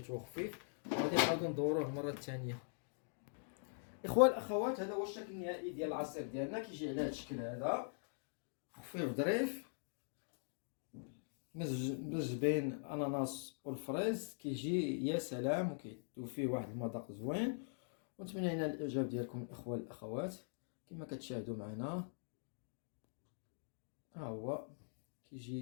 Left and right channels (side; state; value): right; silent; digital silence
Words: خفيف. وغادي نعاودو ندوروه المره الثانيه. اخوان الاخوات هذا هو الشكل النهائي ديال العصير ديالنا، كيجي على هذا الشكل هذا خفيف ظريف، مزج بين الاناناس والفريز، كيجي يا سلام وكيدوب فيه واحد المذاق زوين. ونتمنى لنا الاعجاب ديالكم الاخوان الاخوات. كما كتشاهدوا معنا ها هو